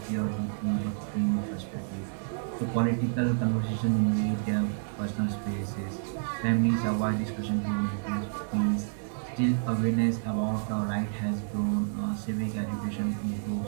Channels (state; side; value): silent; left; digital silence